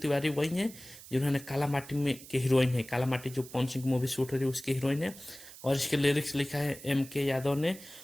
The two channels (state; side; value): noise; right; hiss, 17 dB below the sound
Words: वही है जिन्होंने काला माटी में के हीरोइन है। काला माटी जो पवन सिंह की मूवी शूट हो रही है उसकी हीरोइन है। और इसके लिरिक्स लिखा है M.K. यादव ने,